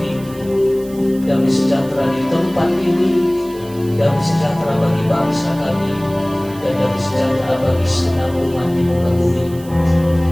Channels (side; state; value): right; noise; hiss, 21 dB below the sound